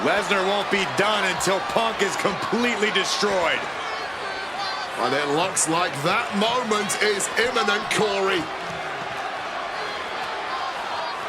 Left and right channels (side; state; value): both; identical; correlation 1.00